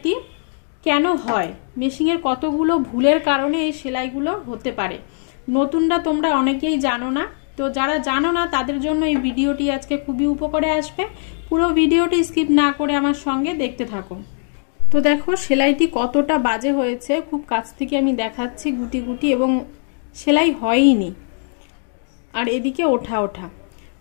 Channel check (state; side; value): silent; right; digital silence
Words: কেন হয়, মেশিনের কতগুলো ভুলের কারণে এই সেলাইগুলো হতে পারে। নতুনরা তোমরা অনেকেই জানো না, তো যারা জানো না তাদের জন্য এই ভিডিওটি আজকে খুবই উপকারে আসবে। পুরো ভিডিওটি স্কিপ না করে আমার সঙ্গে দেখতে থাকো। তো দেখো সেলাইটি কতটা বাজে হয়েছে, খুব কাছ থেকে আমি দেখাচ্ছি গুটি গুটি, এবং সেলাই হয়ইনি, আর এদিকে ওঠা ওঠা।